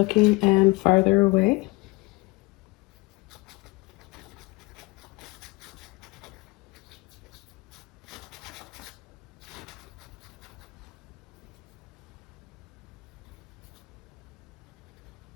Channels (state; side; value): quieter; right; 25.3 dB